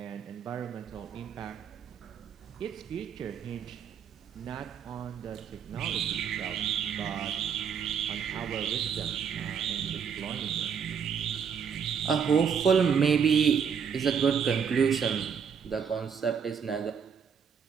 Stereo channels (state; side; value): quieter; left; 7.0 dB